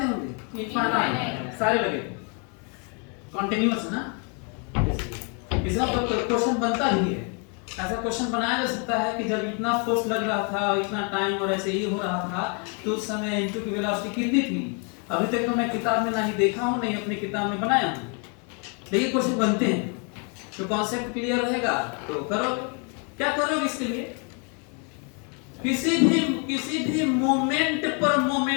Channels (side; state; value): right; quieter; 36.9 dB